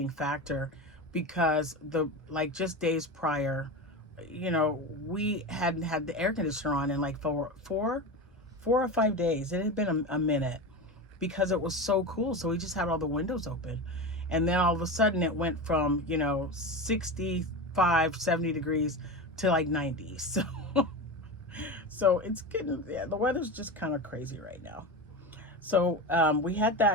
factor because just days prior, you know, we hadn't had the air conditioner on in like four or 5 days. It had been a minute because it was so cool. So we just had all the windows open. And then all of a sudden it went from, you know, 65, 70 degrees to like 90. So it's getting, yeah, the weather's just kind of crazy right now. So we had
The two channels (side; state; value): both; normal; correlation 0.24